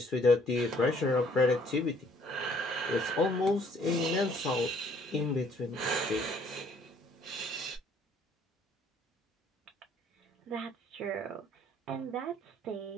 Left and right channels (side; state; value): both; normal; correlation 0.61